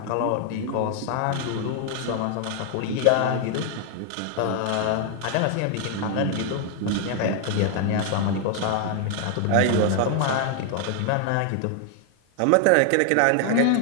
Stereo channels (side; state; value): both; different; correlation 0.00